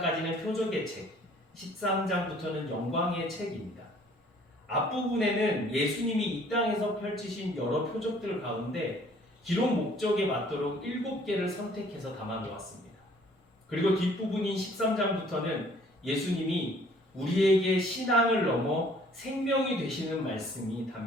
표적의 책, 13장부터는 영광의 책입니다. 앞부분에는 예수님이 이 땅에서 펼치신 여러 표적들 가운데 기록 목적에 맞도록 7개를 선택해서 담아 놓았습니다. 그리고 뒷부분인 13장부터는 예수님이 우리에게 신앙을 넘어 생명이 되시는 말씀이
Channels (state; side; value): normal; both; correlation 0.57